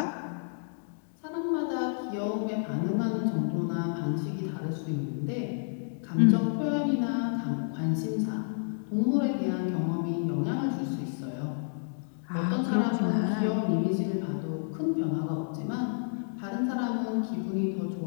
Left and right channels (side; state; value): right; silent; digital silence